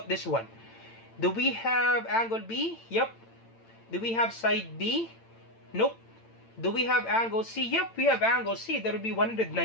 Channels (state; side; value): late; right; 8.9 ms